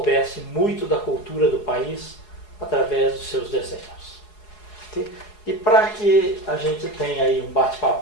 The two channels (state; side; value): late; right; 4.8 ms